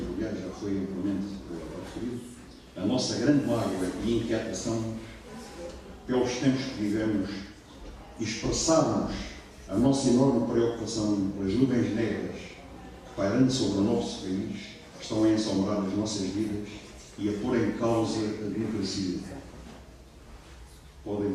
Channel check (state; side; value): identical; both; correlation 1.00